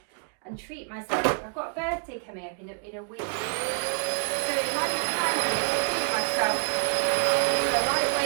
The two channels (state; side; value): quieter; left; 37.6 dB